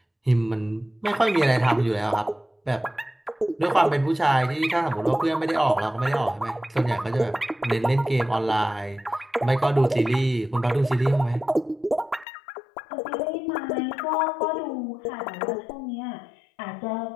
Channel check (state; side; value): drops out; right; at 12.2 s